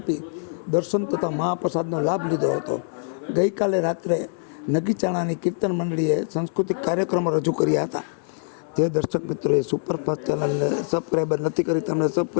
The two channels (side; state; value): right; silent; 63 dB below the other